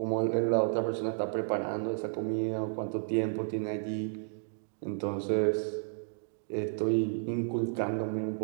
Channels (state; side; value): silent; left; digital silence